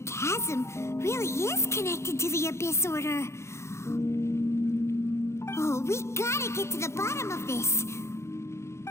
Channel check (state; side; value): late; right; 0.13 ms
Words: really is connected to the Abyss Order. Oh, we gotta get to the bottom of this.